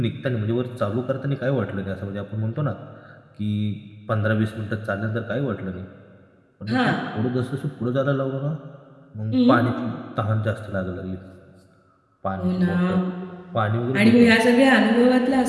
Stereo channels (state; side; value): identical; both; correlation 1.00